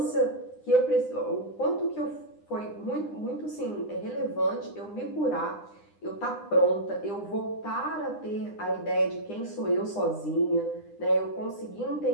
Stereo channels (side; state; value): right; late; 9.9 ms